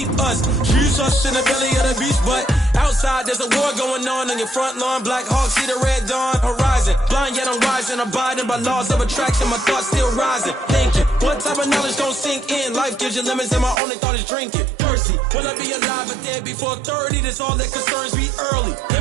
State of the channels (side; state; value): left; drops out; at 13.8 s